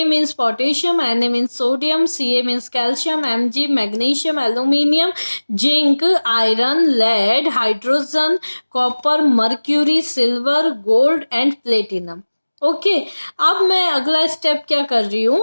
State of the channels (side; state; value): both; inverted; correlation -1.00